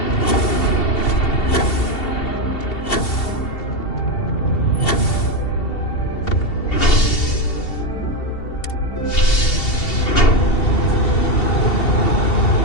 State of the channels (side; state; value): right; late; 2.7 ms